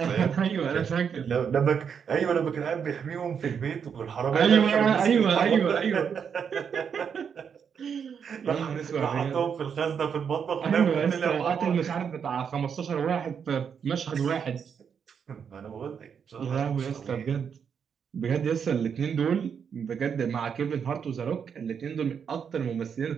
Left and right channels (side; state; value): left; quieter; 7.1 dB